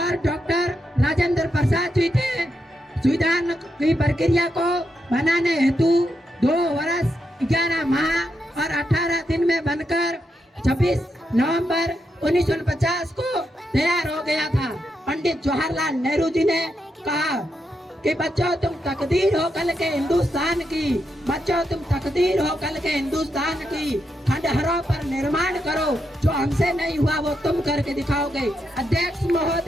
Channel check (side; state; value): both; normal; correlation 0.83